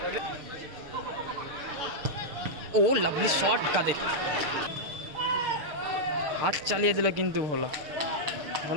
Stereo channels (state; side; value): late; left; 6.8 ms